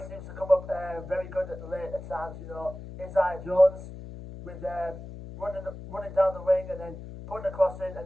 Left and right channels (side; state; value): left; noise; hum, 12 dB below the sound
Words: seems to come up very good at the later times. You know, Isaiah Jones with running down the wing and then putting a cross in,